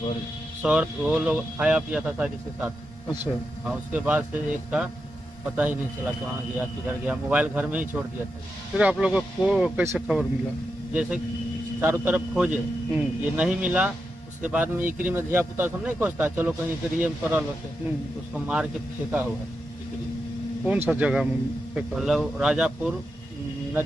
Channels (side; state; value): both; normal; correlation 0.87